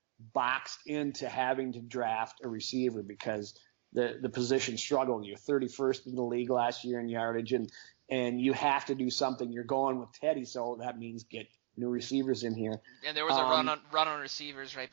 boxed into having to draft a receiver because the position struggled. You're 31st in the league last year in yardage, and you have to do something. You're going with Teddy, so that means get new receivers in here. And there was a run on receivers right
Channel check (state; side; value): silent; left; 54 dB below the other